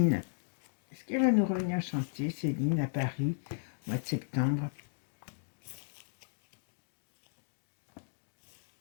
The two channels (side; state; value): right; silent; digital silence